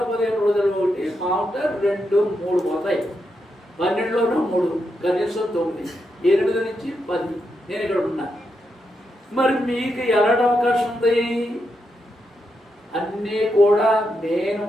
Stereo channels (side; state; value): both; normal; correlation 0.84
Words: రోజులు ఒకటి, మామూలుగా 2, 3 పోతాయి. 12లోనూ 3, కనీసం 9, 8 నుంచి 10 నేను ఇక్కడ ఉన్నా. మరి మీకు ఎలాంటి అవకాశం ఉంది? అన్నీ కూడా నేను